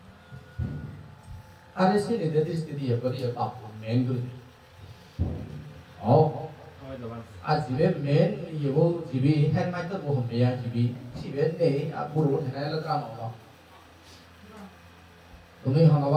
ada sini dari sini apa dia apa main dulu azibe main ibu jibi hand mic tu bukan dia jibi jibi ni buruk ni lah drama orang tu ni orang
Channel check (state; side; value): identical; both; correlation 1.00